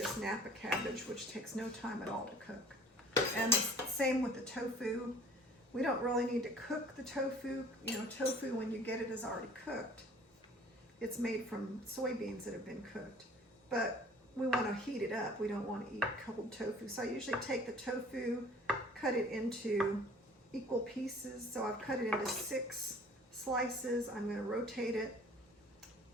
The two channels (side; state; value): both; normal; correlation 0.50